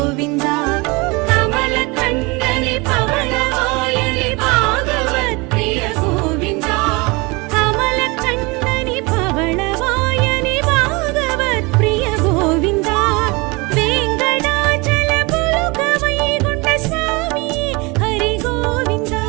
கமல கண்டனே பவளவாயனே பாகவத் பிரிய கோவிந்தா கமல கண்டனே பவளவாயனே பாகவத் பிரிய கோவிந்தா வேங்கடாச்சல புலுக வைகுண்ட சுவாமி ஹரி கோவிந்தா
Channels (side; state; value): left; quieter; 26.4 dB